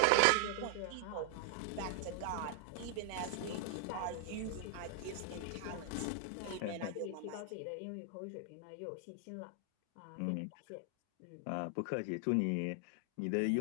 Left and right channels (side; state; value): both; different; correlation 0.00